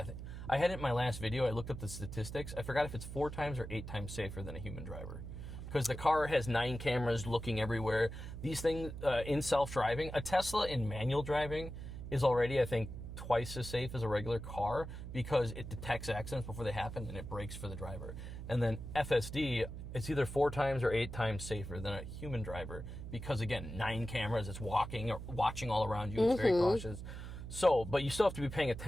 I had it in my last video. I looked up the statistics. I forgot if it's 4 times or 8 times safer than a human driver. Because the car has 9 cameras looking everywhere. These things in self-driving, a Tesla in manual driving is already, I think, twice as safe as a regular car because it detects accidents before they happen and it brakes for the driver. And then FSD, it's either 4 times or 8 times safer than a human driver because, again, 9 cameras, it's watching all around you, it's very cautious. So, but you still have to be paying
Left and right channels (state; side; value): noise; right; hum, 9 dB below the sound